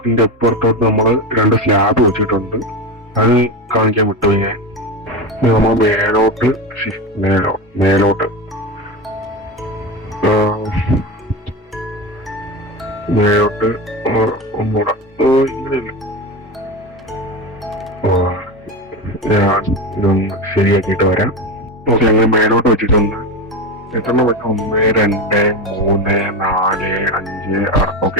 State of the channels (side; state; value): both; normal; correlation 0.21